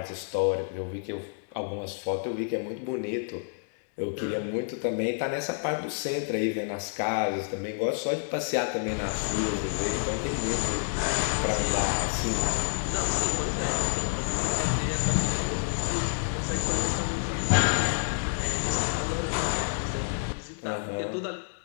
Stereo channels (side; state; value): right; silent; digital silence